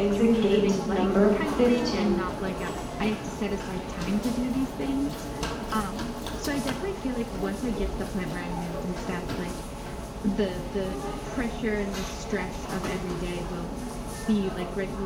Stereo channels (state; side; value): identical; both; correlation 1.00